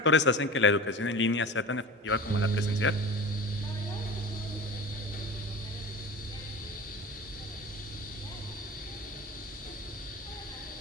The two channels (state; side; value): normal; both; correlation 0.34